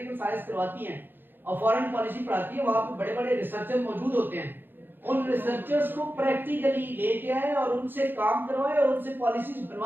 साइंस करवाती हैं और फॉरेन पॉलिसी पढ़ाती है, वहां पे बड़े बड़े रिसर्चर मौजूद होते हैं. उन रिसर्चर्स को प्रैक्टिकली लेके आए और उनसे काम करवाए और उनसे पॉलिसीज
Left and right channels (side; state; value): left; late; 0.097 ms